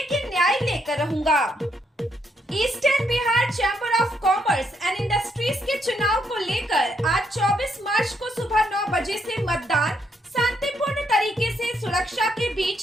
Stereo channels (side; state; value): both; normal; correlation 0.76